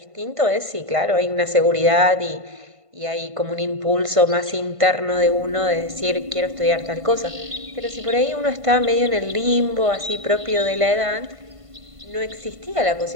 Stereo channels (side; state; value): left; late; 1.5 ms